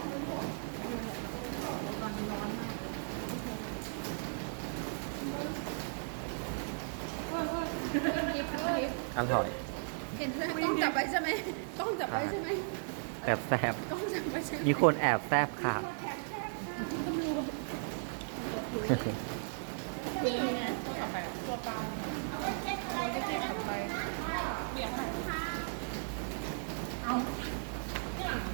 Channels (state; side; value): silent; left; 54 dB below the other